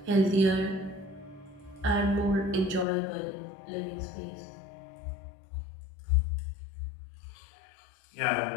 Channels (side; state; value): right; drops out; at 2.9 s